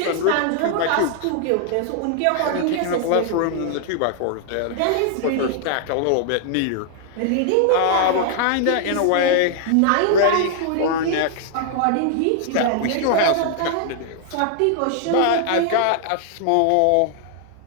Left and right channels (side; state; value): both; different; correlation 0.00